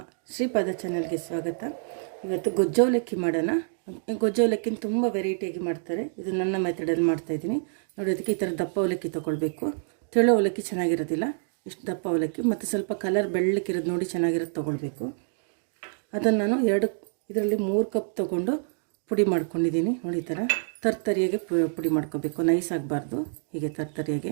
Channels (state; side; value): silent; left; digital silence